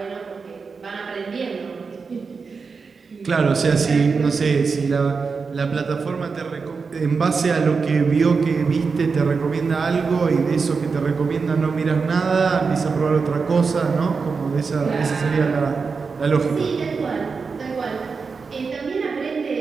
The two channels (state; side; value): quieter; left; 5.0 dB